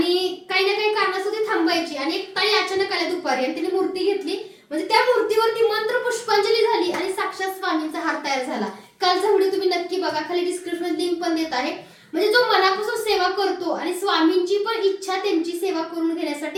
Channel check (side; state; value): both; identical; correlation 1.00